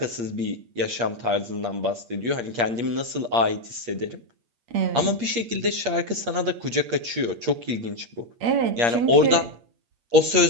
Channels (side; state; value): left; late; 8.5 ms